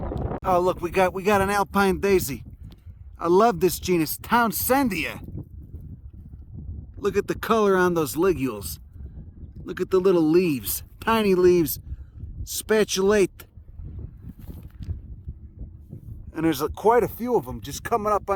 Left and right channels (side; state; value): both; identical; correlation 1.00